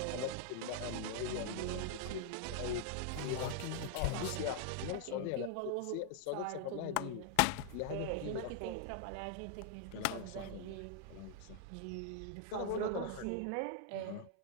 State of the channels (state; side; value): different; both; correlation -0.01